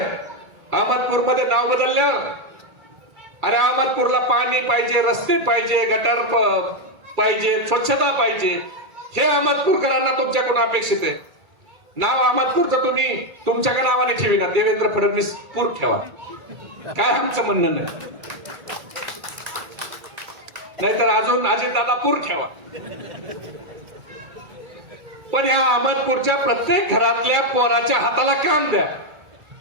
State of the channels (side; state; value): left; late; 2.3 ms